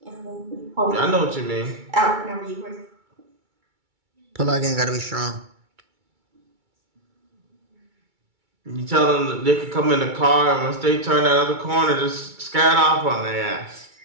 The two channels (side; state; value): left; late; 2.3 ms